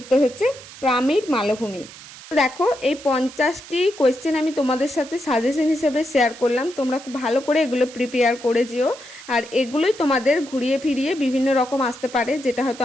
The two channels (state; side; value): noise; right; hiss, 17 dB below the sound